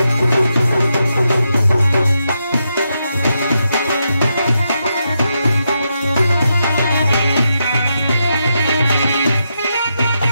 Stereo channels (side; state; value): both; inverted; correlation -0.84